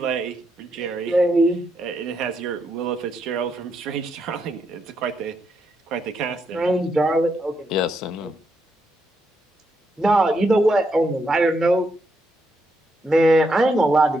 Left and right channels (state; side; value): normal; both; correlation 0.80